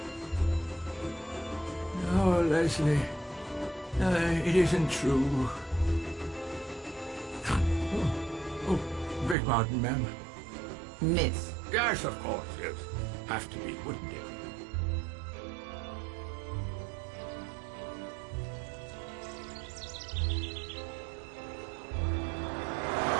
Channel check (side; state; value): left; drops out; at 9.3 s